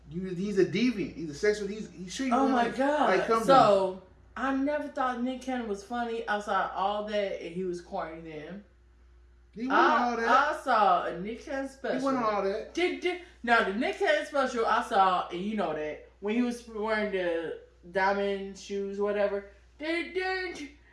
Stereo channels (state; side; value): identical; both; correlation 1.00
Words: He's a deviant. He's a sexual. He's treating. Oh my god! So I never thought Nick Cannon was funny outside all that, and he was corny then. He wasn't all that. I saw a Nick Cannon special. He wasn't all that. Now the Nick Cannon special I saw, and you know that when he was wearing the diamond shoes, whatever.